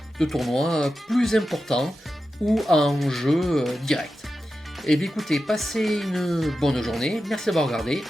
de tournois plus importants ou en jeu direct. Et bien écoutez, passez une bonne journée. Merci d'avoir regardé.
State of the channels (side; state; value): both; normal; correlation 0.91